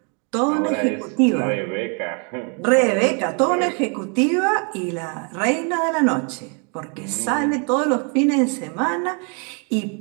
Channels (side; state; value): left; quieter; 37.3 dB